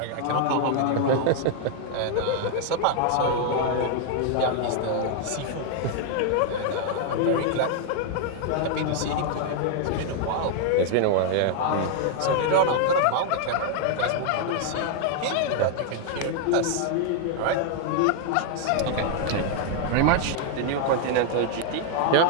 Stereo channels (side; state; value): both; different; correlation 0.00